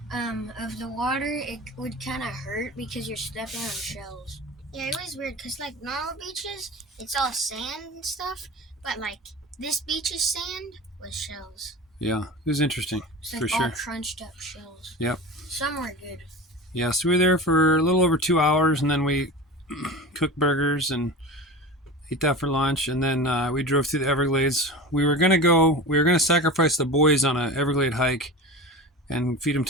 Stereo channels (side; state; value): both; normal; correlation 0.32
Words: of the water, it would kind of hurt because you're stepping on shells. Yeah, it was weird because like normal beaches, it's all sand and stuff, but like this beach's sand was shells. Yeah, it was interesting, It's for like sure. all crunched up shells. Yep. Some were good. Yeah, so we were there for a little over 2 hours, and then we cooked burgers and ate that for lunch, and then we drove through the Everglades. We were gonna sacrifice the boys on a Everglade hike and feed them